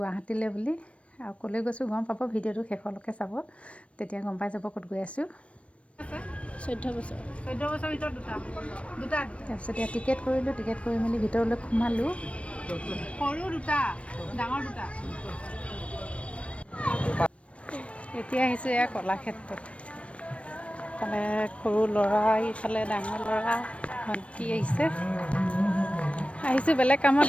বুলি। আৰু ক'লৈ গৈছোঁ গম পাব, ভিডিঅ'টো শেষলৈকে চাব, তেতিয়া গম পাই যাব ক'ত গৈ আছোঁ। 14 বছৰ ভিতৰত দুটা তাৰপিছত এতিয়া টিকেট কৰিলোঁ, টিকেট কৰি মেলি ভিতৰলৈ সোমালোঁ। সৰু দুটা, ডাঙৰ দুটা। এতিয়া আহিছোঁ এয়া কলাক্ষেত্ৰত। ইফালে সৰু ল'ৰা, ইফালে ডাঙৰ ল'ৰা, ভণ্টি আহিছোঁ বেলেগ কামত,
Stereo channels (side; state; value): right; late; 0.062 ms